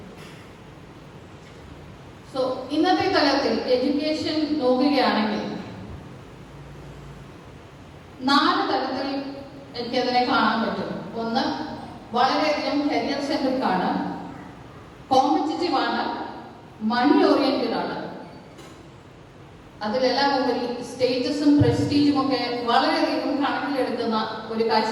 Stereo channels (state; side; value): identical; both; correlation 1.00